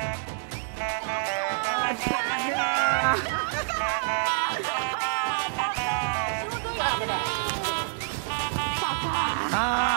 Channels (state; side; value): silent; left; digital silence